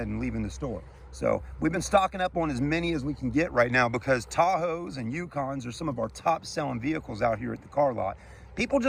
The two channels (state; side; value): identical; both; correlation 1.00